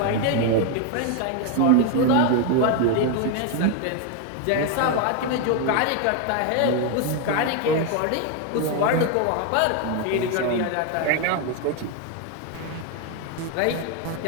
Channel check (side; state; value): both; different; correlation 0.01